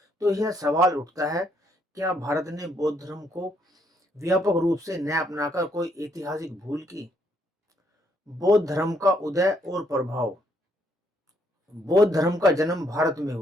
तो यह सवाल उठता है, क्या भारत ने बौद्ध धर्म को व्यापक रूप से न अपनाकर कोई ऐतिहासिक भूल की? बौद्ध धर्म का उदय और प्रभाव। बौद्ध धर्म का जन्म भारत में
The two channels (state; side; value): normal; both; correlation 0.71